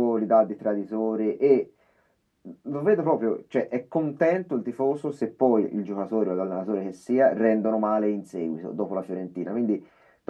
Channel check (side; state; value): both; identical; correlation 1.00